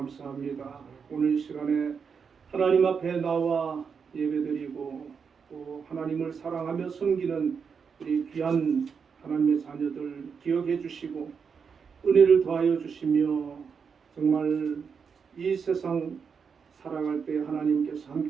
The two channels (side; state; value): left; quieter; 6.1 dB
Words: 오늘 시간에 하나님 앞에 나와 예배드리고 또 하나님을 사랑하며 섬기는 우리 귀한 하나님의 자녀들 기억해 주시고 은혜를 더하여 주시며 정말 이 세상 살아갈 때 하나님께서